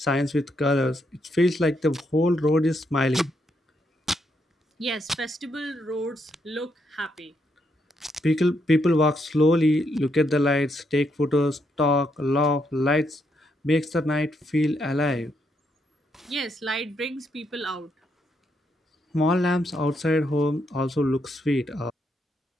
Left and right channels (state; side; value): normal; both; correlation 0.78